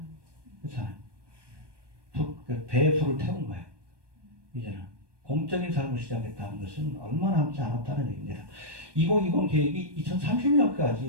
그렇잖아요. 배에 불을 태운 거예요. 이제는 공적인 삶을 시작했다는 것은 얼마 남지 않았다는 얘기입니다. 2020 계획이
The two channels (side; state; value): left; late; 1.2 ms